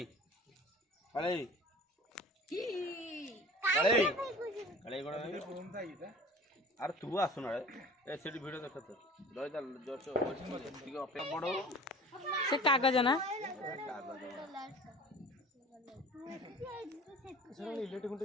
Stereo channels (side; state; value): both; normal; correlation 0.42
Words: କାଳେଇ କାଳେଇ କାଳେଇ କ'ଣ ଆରେ ତୁ ଆସୁନ ଏ ସେଠି ଭିଡ଼ିଓ ଦେଖ ତ ରହିଥା ଜଷ୍ଟ ଟିକେ ଅପେକ୍ଷା ବଡ଼ ସେ କାଗଜ ନା इलेक्ट्रिक खुंटे